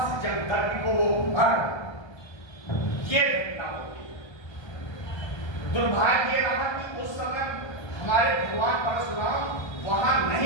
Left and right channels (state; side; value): late; right; 1.3 ms